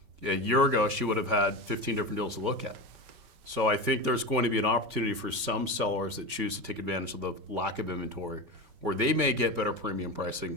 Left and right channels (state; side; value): late; left; 5.2 ms